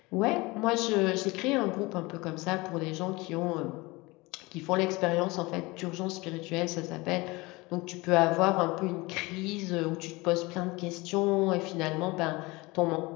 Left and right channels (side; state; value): right; quieter; 23.3 dB